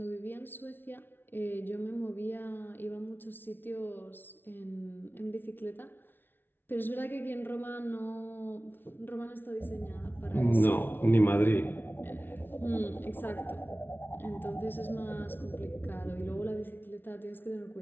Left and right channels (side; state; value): right; late; 0.10 ms